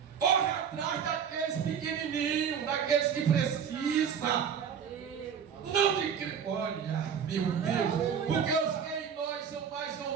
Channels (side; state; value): left; quieter; 7.5 dB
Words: Corre atrás daqueles pequenininhos, daqueles que precisam. Não de... Olha, meu Deus. Porque os que em nós são mais